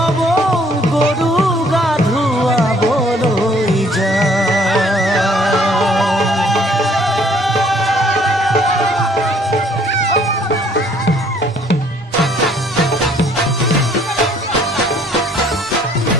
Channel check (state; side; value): normal; both; correlation 0.61